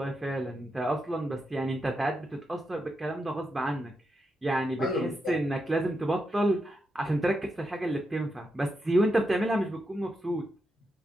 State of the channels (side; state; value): both; normal; correlation 0.85